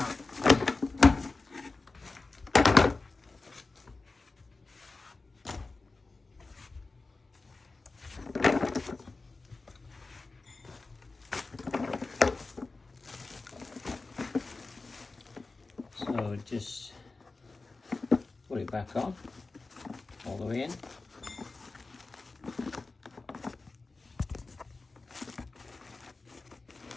So just put it back on, all the way in.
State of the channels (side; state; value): right; quieter; 3.7 dB